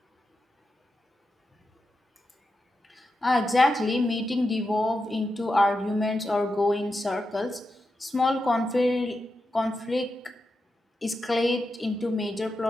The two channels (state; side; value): normal; both; correlation 0.88